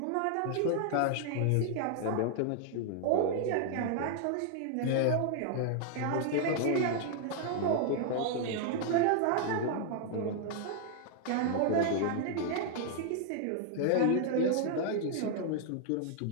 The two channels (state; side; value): different; both; correlation 0.00